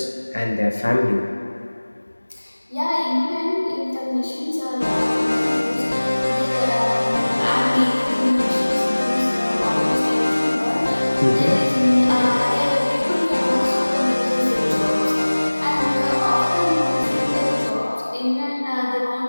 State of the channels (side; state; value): both; inverted; correlation -1.00